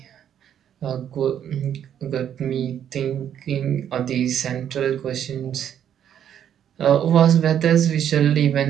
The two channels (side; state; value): left; quieter; 9.6 dB